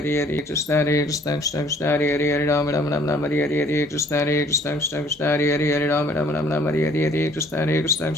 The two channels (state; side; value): normal; both; correlation 0.58